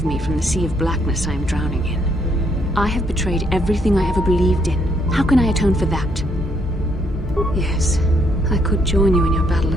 me from the sea of blackness I am drowning in. I have betrayed everything I ever believed in. How can I atone for that? Yes, I could join you in your battle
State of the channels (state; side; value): normal; both; correlation 0.71